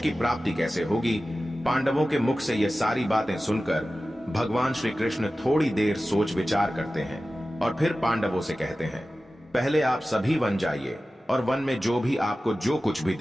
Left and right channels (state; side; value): normal; both; correlation 0.95